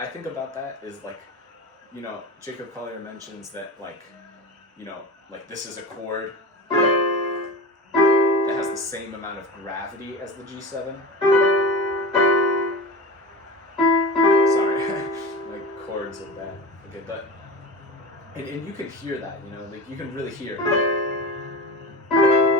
think about that is, like, you know, Jacob Collier mentions that, like, you know, like this is a chord that has the same amount of gravity as the G7. Sorry, like chords of that. Okay, but and you can hear that, you know, like you can really hear,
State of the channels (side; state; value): both; normal; correlation 0.29